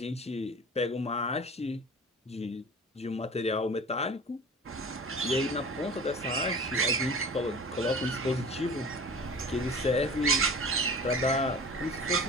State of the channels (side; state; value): both; normal; correlation 0.40